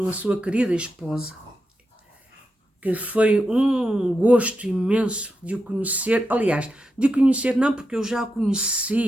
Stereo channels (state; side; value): normal; both; correlation 0.87